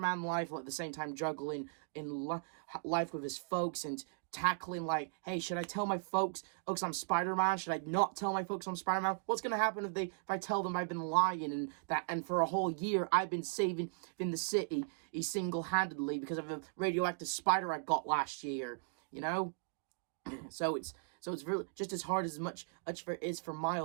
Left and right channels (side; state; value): left; silent; digital silence